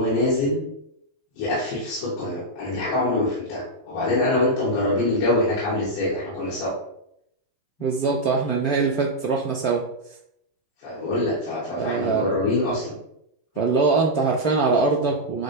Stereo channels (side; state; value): right; late; 14 ms